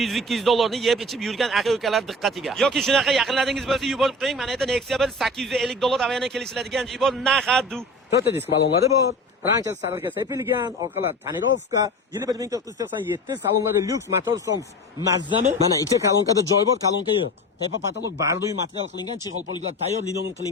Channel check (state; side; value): normal; both; correlation 0.34